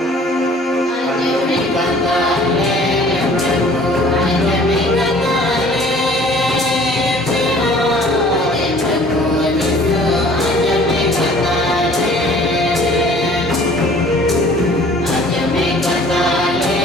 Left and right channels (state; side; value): normal; both; correlation 0.51